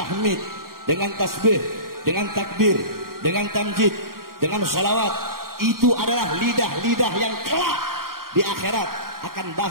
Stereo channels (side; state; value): left; late; 0.92 ms